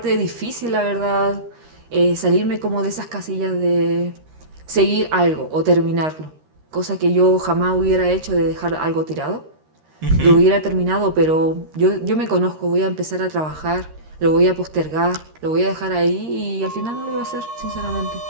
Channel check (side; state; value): left; late; 13 ms